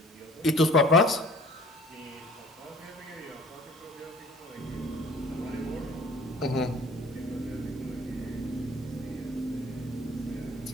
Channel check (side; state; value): both; normal; correlation 0.50